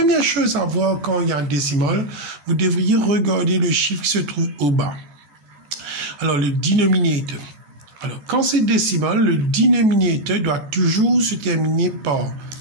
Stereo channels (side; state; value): left; late; 15 ms